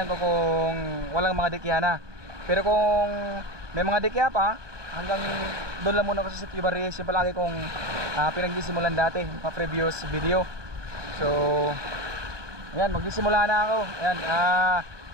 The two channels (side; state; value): left; late; 1.2 ms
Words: ko kung walang mga dikya na. Pero kung may mga dikya pa, hanggang doon lang muna ako sa Sitio Barriles. Yung palagi kong pinagsimulan dati, mga previous video. So, ayan, magsisimula na ako. Ayan,